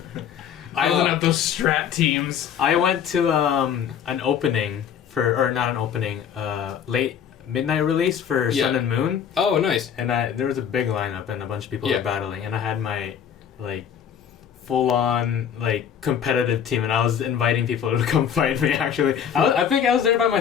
Building up those strat teams. I went to an opening not an opening, late midnight release for Sun and Moon. Oh, nice. And there was a big lineup and a bunch of people were battling, and I had my full on competitive team, and I was inviting people to come fight me. Actually, I think I was there by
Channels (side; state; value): right; quieter; 8.4 dB